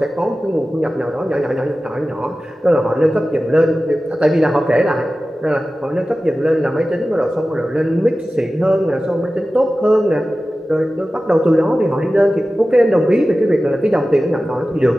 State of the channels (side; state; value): both; normal; correlation 0.95